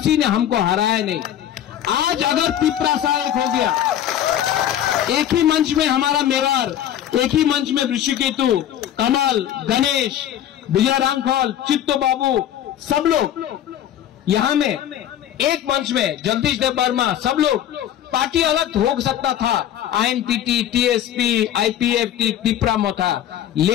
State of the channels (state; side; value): quieter; right; 11.0 dB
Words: ने हमको हराया नहीं। आज अगर त्रिपुरा एक हो गया, एक ही मंच में हमारा मेवार, एक ही मंच में ऋषिकेतु, कमल, गणेश, विजय रामफल, चित्तो बाबू, सब लोग यहां में एक मंच में, जगदीश देव वर्मा, सब लोग, पार्टी अलग हो सकता था, आईएनपीटी, टीएसपी, आईपीएफटी, त्रिपुरा में था,